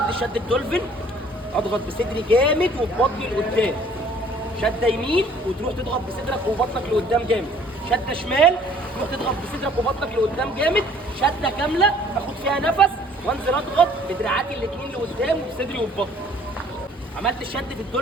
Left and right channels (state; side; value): normal; both; correlation 0.56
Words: شد الدولفين، اضغط بصدري جامد وببطني لقدام، شده يمين وتروح تضغط بصدرك وبطنك لقدام جامد، شده شمال تروح تضغط بصدرك وبطنك لقدام جامد، شده كامله اخد فيها نفس وانزل اضغط بدراعاتي الاثنين لقدام وبصدري وببطني. عملت الشد في